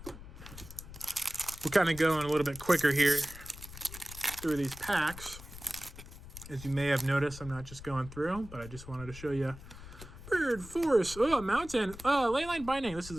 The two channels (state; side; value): noise; left; rumble, 14 dB below the sound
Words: we're kind of going a little bit quicker here through these packs. As you may have noticed, I'm not just going through, but I just wanted to show you. Bird Force. Oh, Mountain. Oh, Leyline Binding. This is